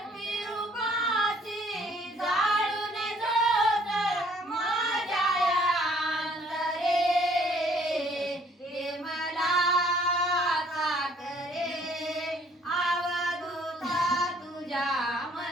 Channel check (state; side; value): normal; both; correlation 0.61